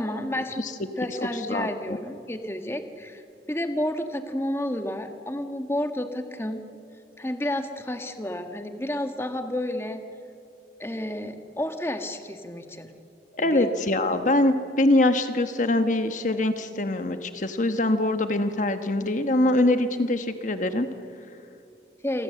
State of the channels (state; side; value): normal; both; correlation 0.59